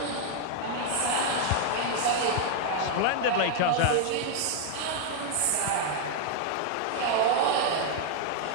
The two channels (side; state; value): both; different; correlation 0.00